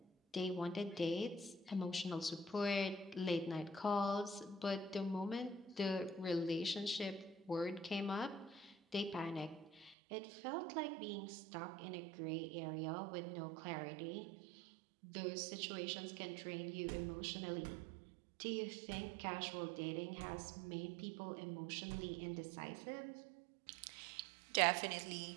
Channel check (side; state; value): left; drops out; at 10.0 s